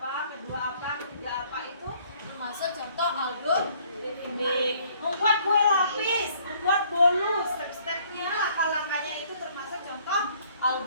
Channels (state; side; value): inverted; both; correlation -0.61